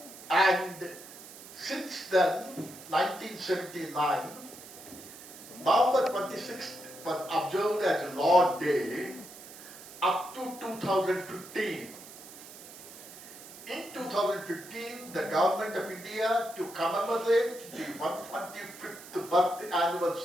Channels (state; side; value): noise; right; hiss, 16 dB below the sound